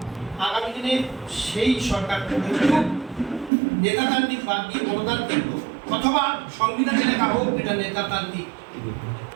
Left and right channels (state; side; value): drops out; left; at 3.5 s